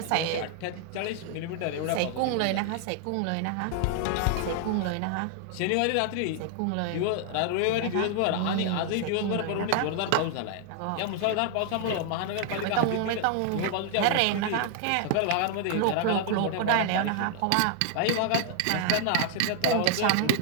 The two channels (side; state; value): both; different; correlation 0.00